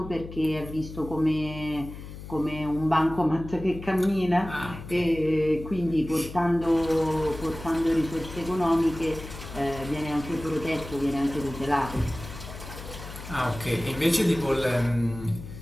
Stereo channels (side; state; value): left; noise; hum, 12 dB below the sound